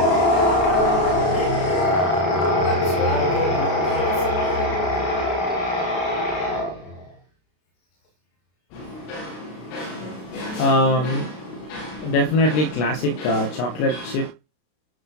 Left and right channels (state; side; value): late; right; 32 ms